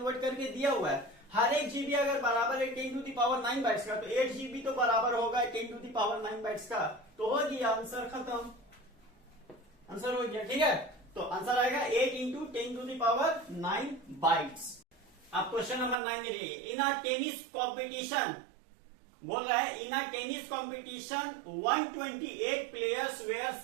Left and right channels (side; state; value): left; drops out; at 16.0 s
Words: करके दिया हुआ है। हर एक GB अगर बराबर है 10 to the power 9 बाइट्स का, तो 8 GB तो बराबर होगा 10 to the power 9 बाइट्स का। तो हो गया आंसर, खत्म, आंसर हो गया, ठीक है। तो आंसर आएगा 8 into 10 to the power 9 bytes. अब क्वेश्चन नंबर 9 में देखिए, इन अ टेनिस कॉम्पिटिशन, बोल रहा है in a tennis competition 128 players were